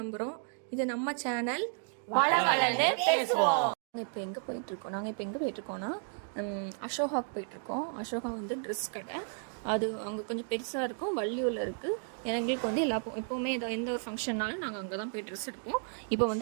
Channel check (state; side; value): silent; left; 56 dB below the other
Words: இது நம்ம சேனல் வளவளன்னு பேசுவோம். நாங்கள் இப்போ எங்கே போயிட்டுருக்கோன்னா அசோகாவுக்கு போயிட்டுருக்கோம். அசோகா வந்து ட்ரெஸ் கடை. அது அங்கே கொஞ்சம் பெருசாக இருக்கும், வள்ளியூரில் இருக்குது. எங்களுக்கு வந்து எப்போவுமே எந்த ஒரு ஃபங்க்ஷன்னாலும் நாங்கள் அங்கே தான் போய் ட்ரெஸ் எடுப்போம். இப்போ